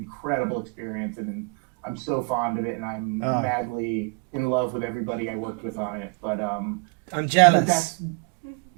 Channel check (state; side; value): quieter; left; 36.5 dB